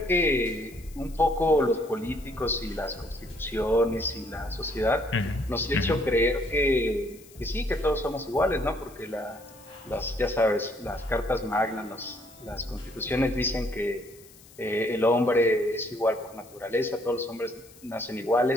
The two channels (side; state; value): left; noise; hiss, 23 dB below the sound